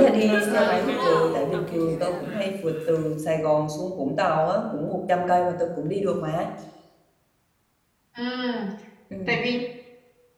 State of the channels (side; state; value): both; identical; correlation 1.00